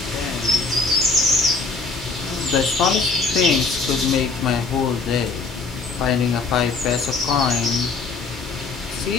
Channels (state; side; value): quieter; right; 4.1 dB